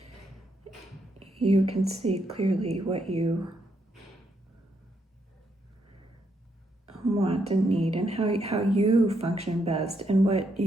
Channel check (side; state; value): both; normal; correlation 0.77